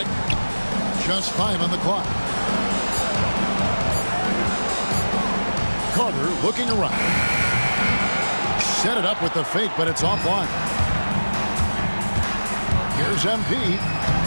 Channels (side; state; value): both; inverted; correlation -1.00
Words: Just 5 on the clock. Carter looking around. Set it up with the fake, but it's offline. Here's MP.